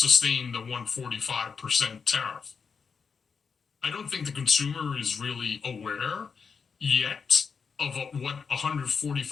the 145% tariff. I don't think the consumer is really aware yet of what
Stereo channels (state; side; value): quieter; right; 5.8 dB